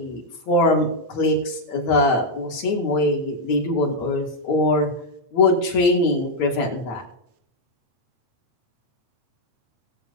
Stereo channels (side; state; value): right; late; 9.1 ms